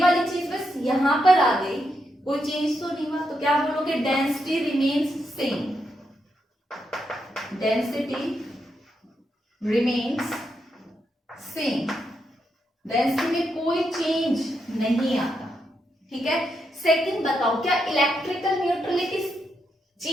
वाली चीज बस यहाँ पर आ गई, कोई चेंज तो नहीं हुआ। तो क्या बोलोगे, density remains same, density remains same, density में कोई चेंज नहीं आता, ठीक है। सेकंड बताओ, क्या इलेक्ट्रिकल न्यूट्रलिटी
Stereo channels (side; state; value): both; normal; correlation 0.82